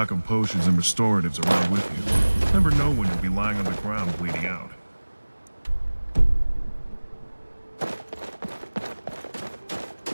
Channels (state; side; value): inverted; both; correlation -1.00